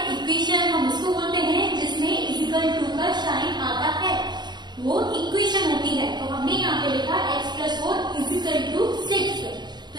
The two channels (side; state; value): left; late; 0.21 ms